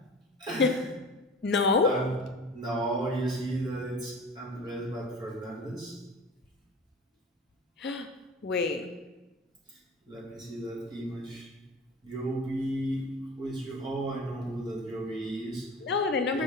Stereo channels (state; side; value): normal; both; correlation 0.37